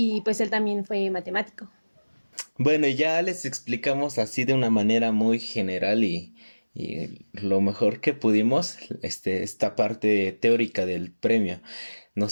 pues él también fue matemático. Bueno, ya les explicamos así de una manera muy general y lo mejor que pudimos, esta parte teórica del premio.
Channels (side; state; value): both; inverted; correlation -1.00